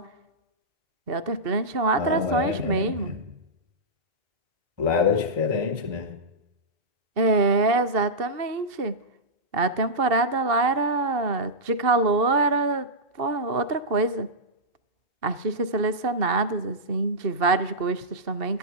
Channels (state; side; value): late; left; 2.6 ms